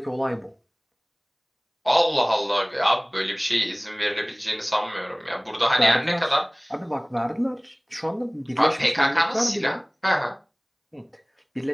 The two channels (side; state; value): both; identical; correlation 1.00